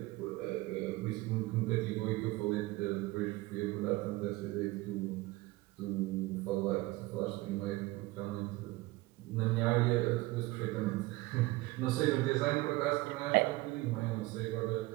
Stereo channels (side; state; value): left; quieter; 20.3 dB